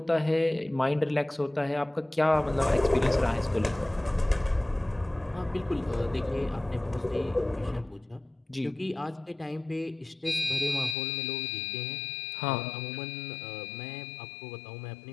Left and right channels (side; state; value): right; drops out; at 11.0 s